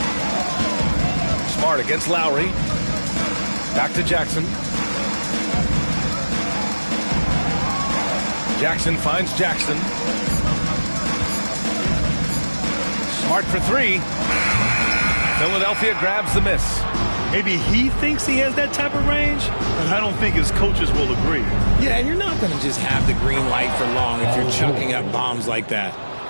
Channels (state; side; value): inverted; both; correlation -1.00